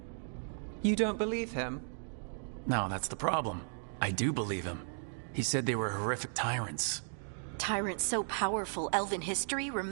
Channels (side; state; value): left; silent; digital silence